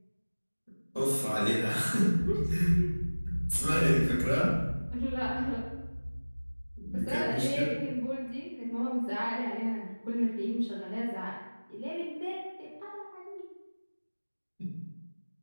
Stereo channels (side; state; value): both; inverted; correlation -1.00